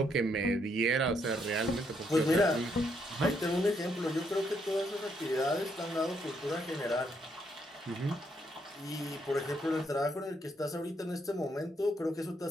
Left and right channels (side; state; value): both; normal; correlation 0.74